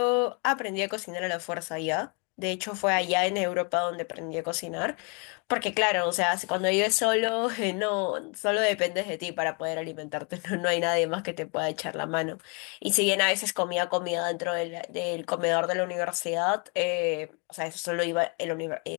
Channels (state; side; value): quieter; right; 35.6 dB